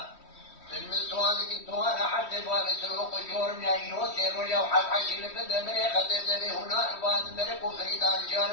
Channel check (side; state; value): right; late; 3.1 ms